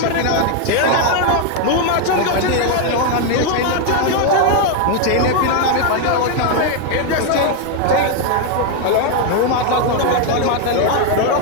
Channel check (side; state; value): both; different; correlation 0.01